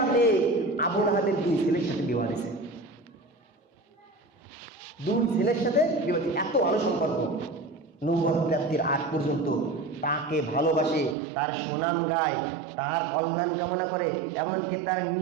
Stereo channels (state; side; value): drops out; left; at 11.2 s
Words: মেয়ে আবু লাহাবের দুই ছেলের সাথে বিবাহ দিয়েছে। দুই ছেলের সাথে বিবাহ, এত ভালো সম্পর্ক। নবুয়ত প্রাপ্তির আগ পর্যন্ত তাকে ভালোবাসে, তার সুনাম গায়, তার কল্যাণ কামনা করে। এমনকি